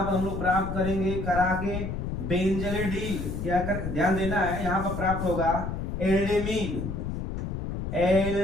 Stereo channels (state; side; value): noise; left; rumble, 4 dB below the sound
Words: पर हम लोग प्राप्त करेंगे करा के बेंजलिडीन, क्या कर, ध्यान देना है, यहाँ पर प्राप्त होगा एल्डीमीन